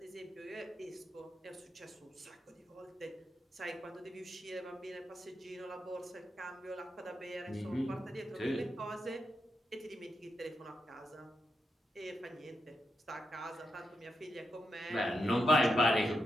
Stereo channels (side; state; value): both; normal; correlation 0.85